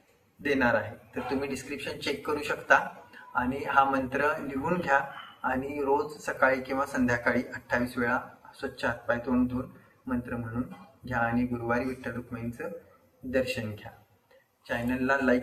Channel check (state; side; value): identical; both; correlation 1.00